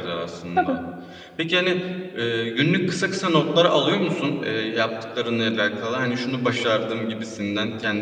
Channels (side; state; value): both; identical; correlation 1.00